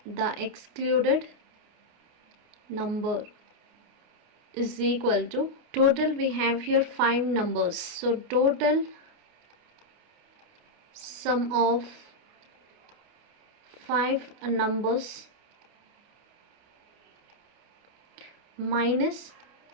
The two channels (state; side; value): late; left; 29 ms